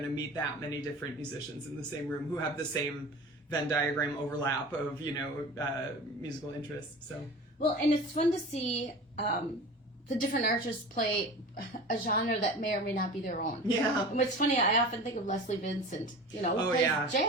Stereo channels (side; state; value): both; normal; correlation 0.36